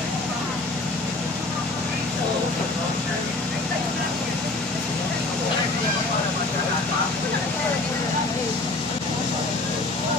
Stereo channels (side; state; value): right; quieter; 3.0 dB